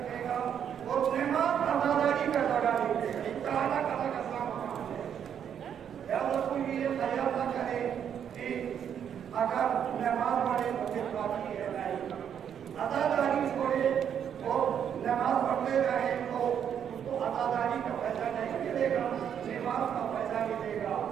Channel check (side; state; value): left; quieter; 8.6 dB